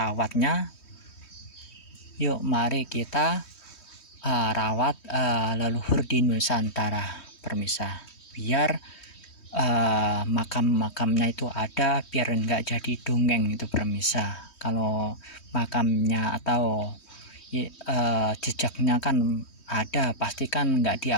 yuk mari kita rawat leluhur di Nusantara permisa, biar makam-makamnya itu ada, biar enggak jadi dongeng itu permisa. Kalau makamnya atau jejaknya kan ada, pastikan enggak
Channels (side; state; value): right; late; 3.2 ms